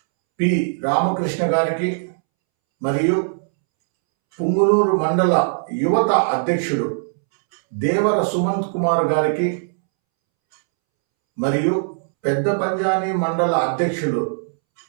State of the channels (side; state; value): left; silent; 66 dB below the other